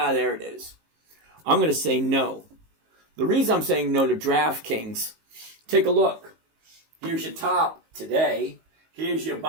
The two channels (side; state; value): left; late; 19 ms